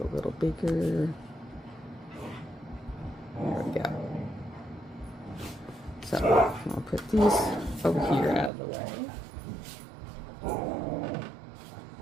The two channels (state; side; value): drops out; left; at 8.5 s